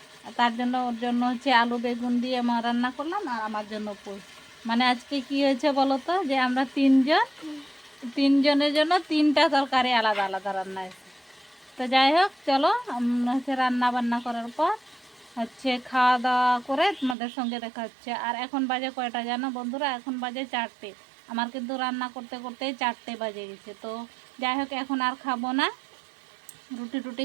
তার জন্য ওর জন্য হচ্ছে আলু বেগুন দিয়ে আমার রান্না করলাম আর আমার জন্য পুঁই। মানে আজকে কি হয়েছে বলো তো, যে আমরা 3 জন, 3 জনের জন্য 3টা তরকারি আলাদা আলাদা রান্না হয়েছে। তো যাই হোক চলো হচ্ছে রান্না বান্না করার পর হচ্ছে খাওয়া দাওয়া করে তোমাদের সঙ্গে দেখা হচ্ছে। আর এখন বাজে কয়টা জানো বন্ধুরা? এখন বাজে 4টে। আমার কিন্তু রান্না করতে করতেই 4টে বাজে গেছে। তো যাই হোক এখন আর খাবো না, রুটি টুটি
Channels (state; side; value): drops out; left; at 17.2 s